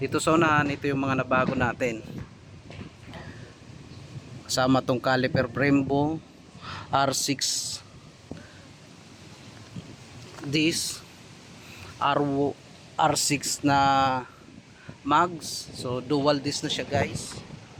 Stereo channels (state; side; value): identical; both; correlation 1.00